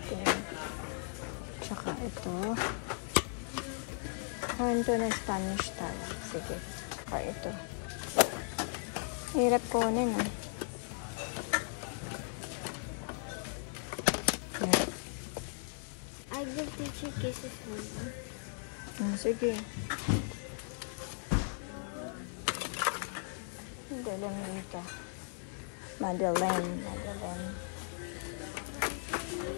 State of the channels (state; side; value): silent; right; 53 dB below the other